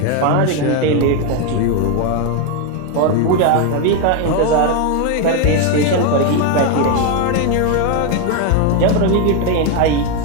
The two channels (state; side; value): different; both; correlation 0.02